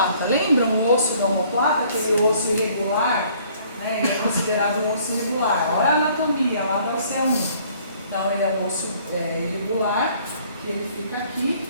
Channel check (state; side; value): inverted; both; correlation -0.59